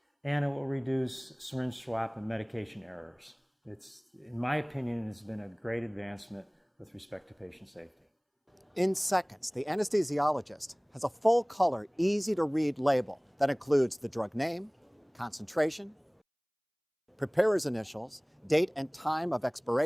and it will reduce syringe swap and medication errors. It's, in my opinion, has been a great advancement with respect to patient safety. In seconds, the anesthesiologist has a full-color, easy-to-read label that includes the drug name, concentration, preparer's initials, date and time of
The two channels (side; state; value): both; identical; correlation 1.00